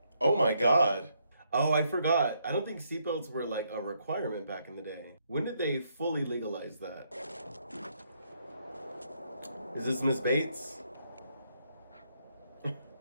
Oh my god. Oh, I forgot. I don't think seatbelts were like a requirement back in the day. When did they fully legalize that? Is this Miss Bates?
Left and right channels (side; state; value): both; inverted; correlation -0.74